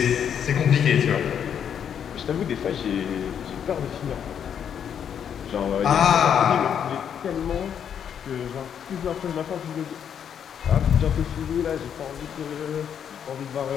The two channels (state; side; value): quieter; right; 8.4 dB